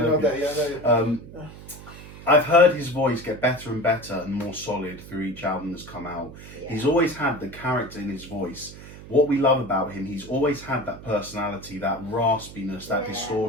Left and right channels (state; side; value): noise; right; hum, 16 dB below the sound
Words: that. Yeah, I've heard his voice get better and better and more solid through each album that's come out. Yeah. He's always had the character in his voice. What we love about him, he's always had that personality, that raspiness, that